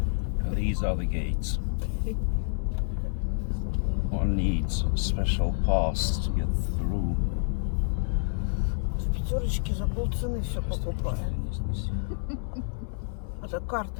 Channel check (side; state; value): right; silent; 59 dB below the other